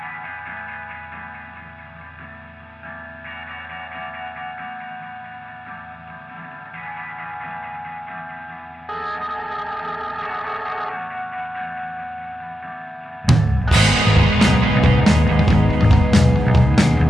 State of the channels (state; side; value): normal; both; correlation 0.89